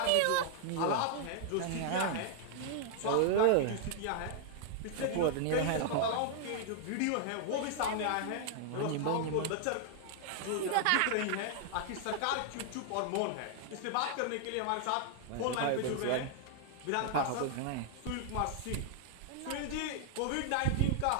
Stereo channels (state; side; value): different; both; correlation 0.00